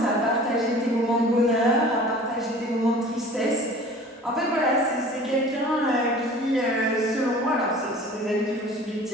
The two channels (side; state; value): both; normal; correlation 0.45